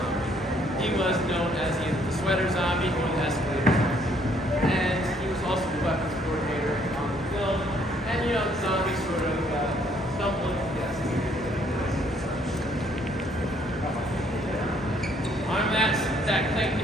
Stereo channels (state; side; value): normal; both; correlation 0.65